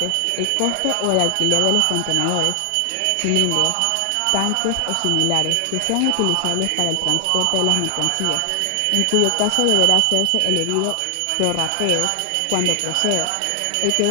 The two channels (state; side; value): different; both; correlation 0.00